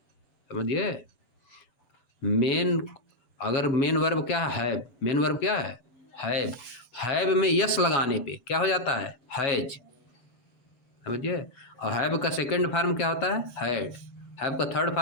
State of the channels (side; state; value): right; late; 8.0 ms